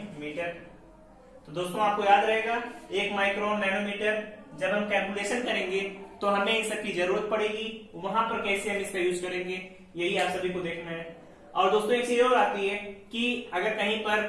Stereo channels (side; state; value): both; identical; correlation 1.00